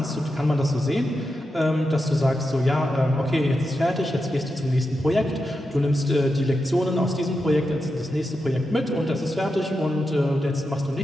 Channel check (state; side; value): normal; both; correlation 0.88